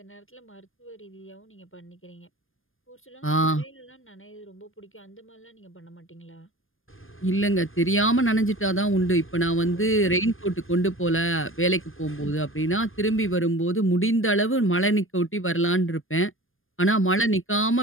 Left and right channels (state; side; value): late; right; 0.59 ms